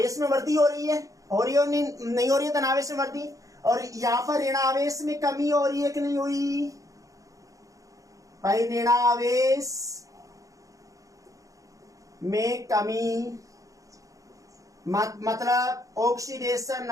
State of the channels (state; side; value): late; left; 0.16 ms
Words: में वृद्धि हो रही है, हो रही है नहीं हो रही है धनावेश में वृद्धि? और यहां पर ऋणावेश में कमी हो रही है कि नहीं हुई भाई? ऋणावेश में कमी मतलब ऑक्सीडेशन